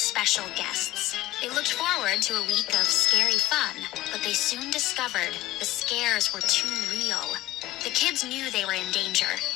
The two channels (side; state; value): right; quieter; 16.8 dB